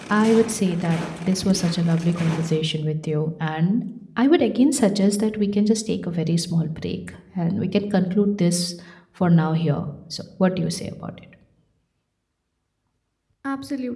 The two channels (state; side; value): identical; both; correlation 1.00